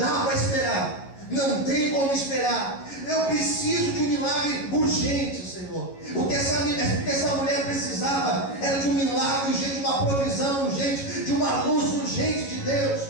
para esperar, não tem como esperar. Eu preciso de um milagre urgente, Senhor. O que essa mulher precisava era de um milagre urgente, de uma provisão urgente, de uma luz urgente de Deus.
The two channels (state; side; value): late; right; 11 ms